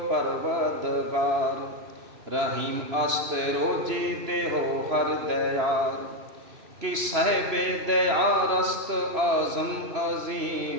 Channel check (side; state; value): left; late; 3.0 ms